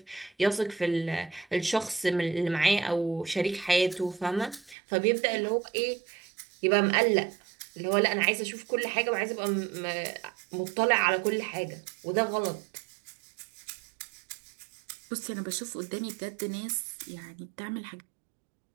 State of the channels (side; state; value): left; drops out; at 4.8 s